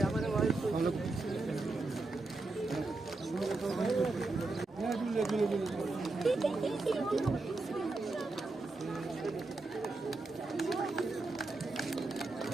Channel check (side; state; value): left; quieter; 3.3 dB